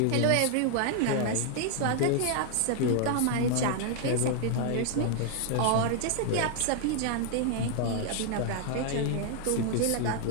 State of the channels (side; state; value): both; different; correlation 0.00